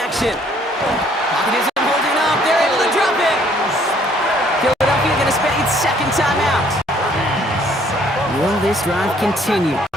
action. Pocket isn't holding up. They're able to drop it. Philadelphia going to spend its 2nd timeout. Will this drive continue?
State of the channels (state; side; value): normal; both; correlation 0.62